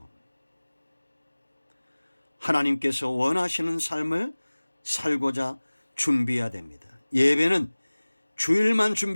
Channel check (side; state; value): both; inverted; correlation -1.00